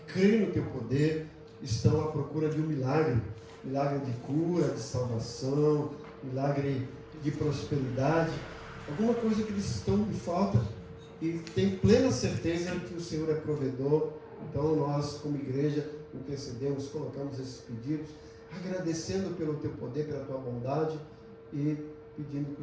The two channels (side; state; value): both; identical; correlation 1.00